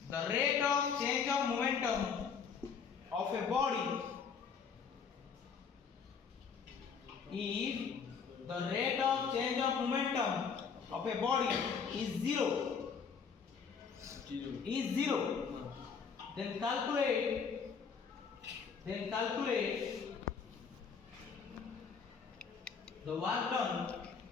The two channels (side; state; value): right; quieter; 6.2 dB